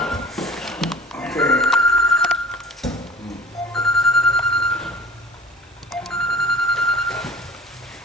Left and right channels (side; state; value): both; normal; correlation 0.44